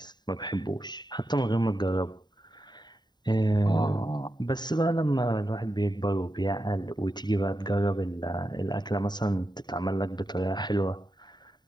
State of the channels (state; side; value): late; right; 0.21 ms